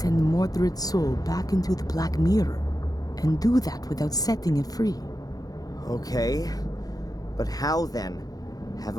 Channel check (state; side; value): late; right; 0.18 ms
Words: Mordred's soul back into the Black Mirror, and do that without setting it free. Okay, but how then?